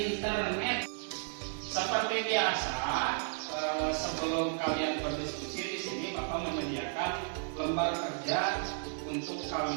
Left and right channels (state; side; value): silent; left; 55 dB below the other